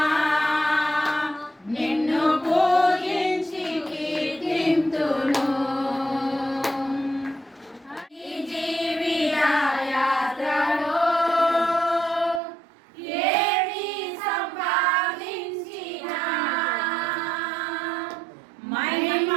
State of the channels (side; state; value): left; drops out; at 12.4 s